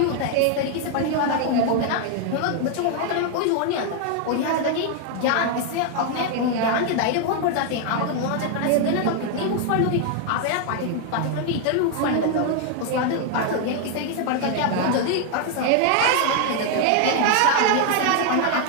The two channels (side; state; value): both; different; correlation 0.00